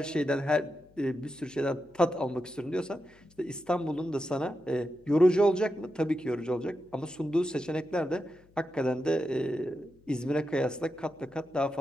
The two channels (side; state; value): left; noise; hum, 30 dB below the sound